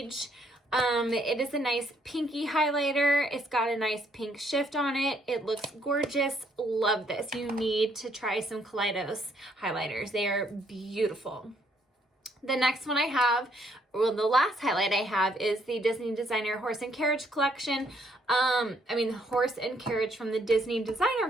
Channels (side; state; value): both; normal; correlation 0.69